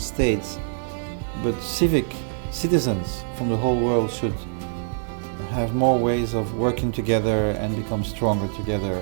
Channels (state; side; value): silent; left; 62 dB below the other